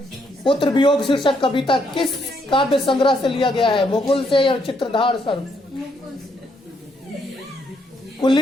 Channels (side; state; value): both; normal; correlation 0.74